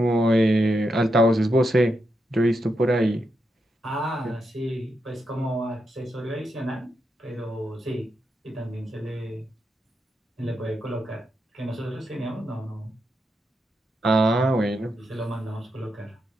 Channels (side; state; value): both; normal; correlation 0.84